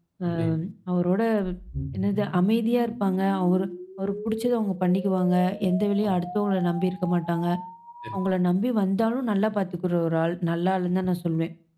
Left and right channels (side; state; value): both; identical; correlation 1.00